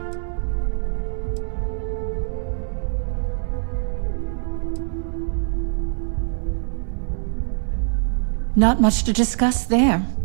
Not much to discuss there.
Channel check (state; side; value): silent; left; digital silence